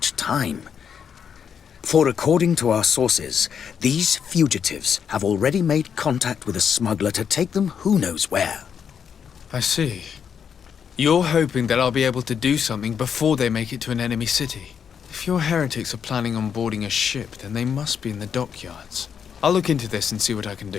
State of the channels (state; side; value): quieter; right; 7.5 dB